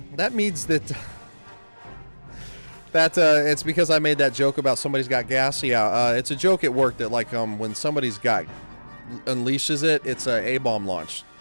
means that... it's because I made that joke about somebody's got gas. Yeah, it's a joke at work that, like, when somebody's got... unleashes it, it's a A-bomb launch.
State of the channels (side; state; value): both; inverted; correlation -1.00